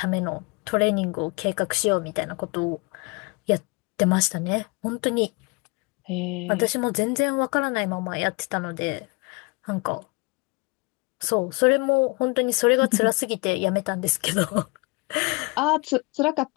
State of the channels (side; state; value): right; quieter; 28.5 dB